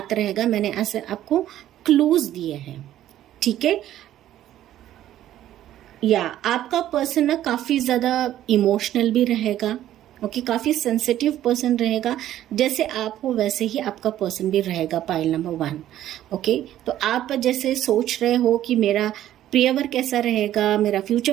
रहेगा, मैंने ऐसे आपको क्लूज दिए हैं। ठीक है, या आपका पर्सन ना काफी ज्यादा इमोशनल भी रहेगा। ओके, काफी सेंसिटिव पर्सन रहेगा, जैसे आप हो वैसे ही आपका पर्सन भी रहेगा। Pile number 1। ओके, तो आप जैसे सोच रहे हो कि मेरा प्रियवर कैसा रहेगा, मेरा फ्यूचर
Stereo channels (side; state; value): left; quieter; 12.6 dB